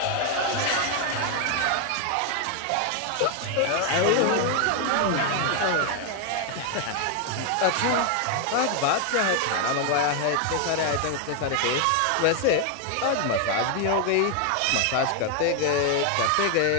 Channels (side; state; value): both; different; correlation 0.01